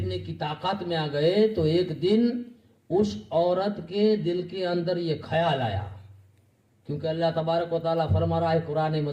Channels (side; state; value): both; identical; correlation 1.00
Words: की ताकत में आ गए तो एक दिन उस औरत के दिल के अंदर ये ख्याल आया, क्योंकि अल्लाह तबारक व तआला फरमा रहा है कुरान